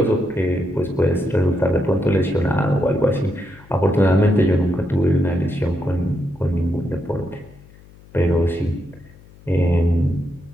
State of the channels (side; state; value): left; noise; hum, 24 dB below the sound